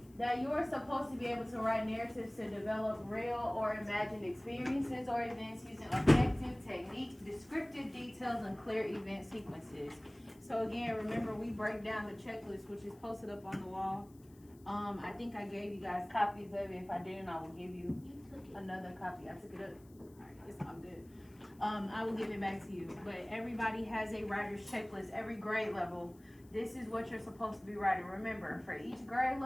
that you're supposed to be able to write narratives to develop real or imagined experiences or events using effective techniques, descriptive details, and clear event sequences. So again, remember we break down the checklist, which is posted up on the wall. I think I gave you guys copies of it. If I didn't, I will give you another copy. I took it up. All right, it's all good. I will give it back to you. But everybody has a writer's checklist, every grade level. This is what you're supposed to be writing. Remember, for each grade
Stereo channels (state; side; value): noise; left; hiss, 28 dB below the sound